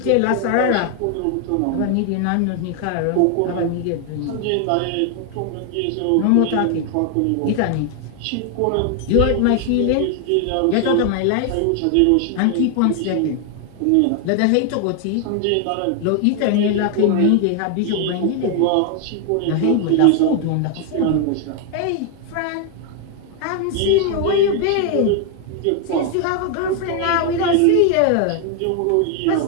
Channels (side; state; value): both; different; correlation 0.00